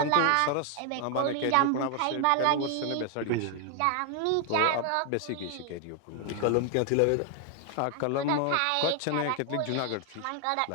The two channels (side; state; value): both; different; correlation 0.00